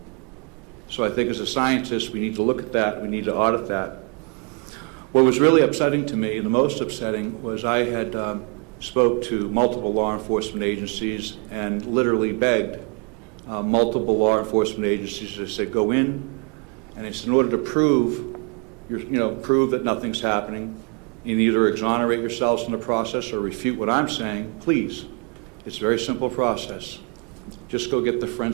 So I think as a scientist, we need to look at that, we need to audit that. What was really upsetting to me, and the most upsetting, was I had spoke to multiple law enforcement agencies and literally begged multiple law enforcement agencies to say, go in, and it's in order to prove that nothing's happening, you either exonerate yourselves in the process or refute what I'm saying, please. It's a very simple process. Just go get the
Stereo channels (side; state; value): left; quieter; 36.2 dB